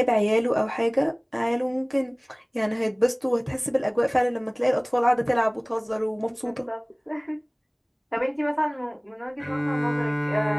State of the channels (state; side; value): identical; both; correlation 1.00